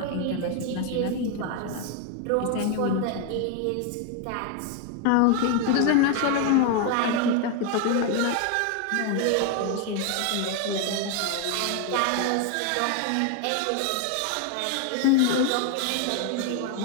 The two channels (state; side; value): different; both; correlation 0.01